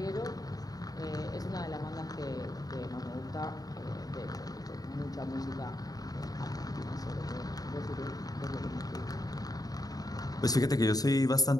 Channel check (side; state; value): right; late; 0.18 ms